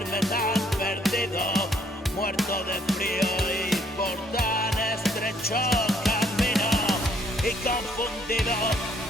tan perdido, muerto de frío y por tan estrecho camino? Y confundido,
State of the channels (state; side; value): normal; both; correlation 0.65